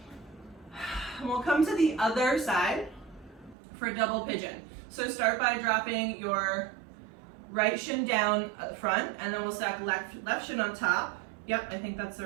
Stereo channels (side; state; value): left; drops out; at 3.6 s